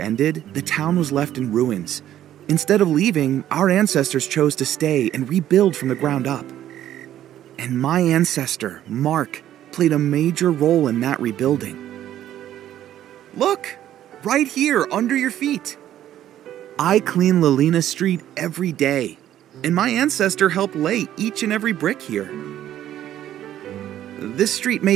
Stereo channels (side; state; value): left; quieter; 11.9 dB